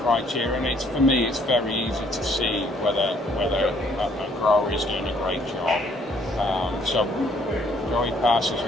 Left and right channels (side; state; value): both; normal; correlation 0.63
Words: and for me, it's very easy to see whether a grower is doing a great job. So Joey passes